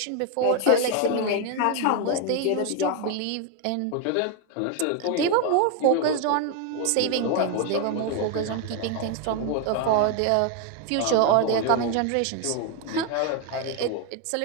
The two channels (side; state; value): both; different; correlation 0.01